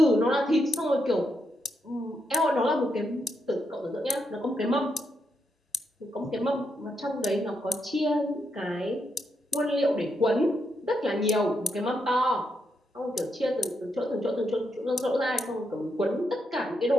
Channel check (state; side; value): normal; both; correlation 0.81